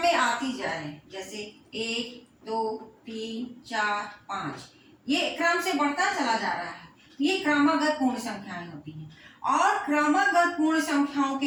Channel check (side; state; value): both; identical; correlation 1.00